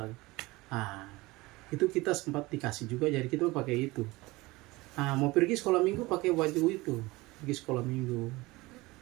Itu kita sempat dikasih juga, jadi kita pakai itu. Mau pergi sekolah minggu pakai baju itu, pergi sekolah minggu.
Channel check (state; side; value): quieter; left; 21.5 dB